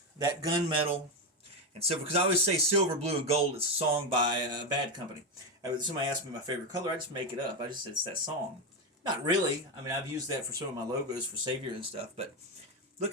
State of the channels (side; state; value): both; normal; correlation 0.11